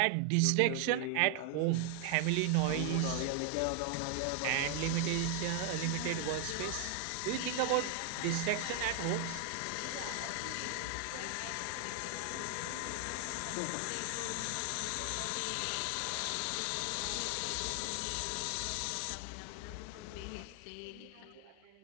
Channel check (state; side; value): different; both; correlation 0.00